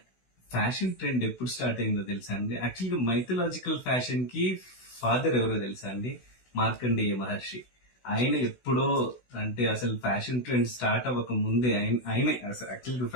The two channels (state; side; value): late; right; 16 ms